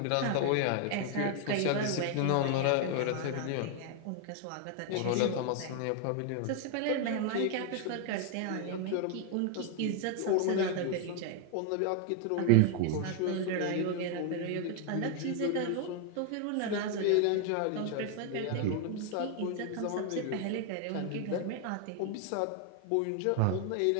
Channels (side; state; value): both; different; correlation 0.00